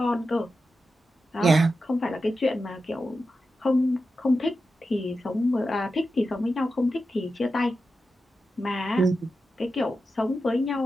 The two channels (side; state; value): both; normal; correlation 0.90